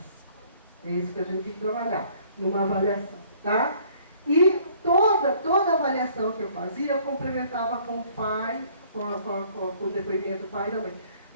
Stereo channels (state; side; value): inverted; both; correlation -0.58